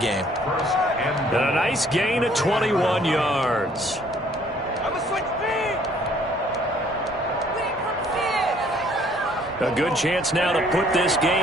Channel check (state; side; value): normal; both; correlation 0.60